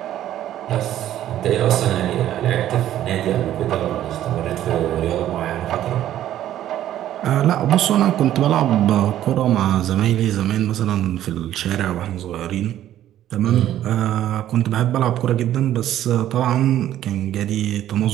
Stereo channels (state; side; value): quieter; left; 12.3 dB